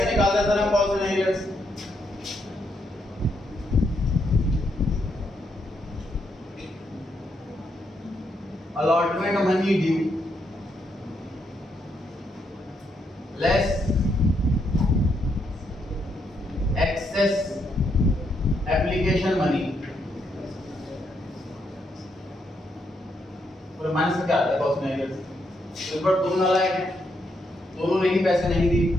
निकालते हैं सर हम calls in arrears? Allotment money due less excess application money. और माइनस से क्या आता है कॉल्स इन एरियर्स? इस पर दोनों नालायक हैं, दोनों ने ही पैसे नहीं दिए,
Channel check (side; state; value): both; normal; correlation 0.78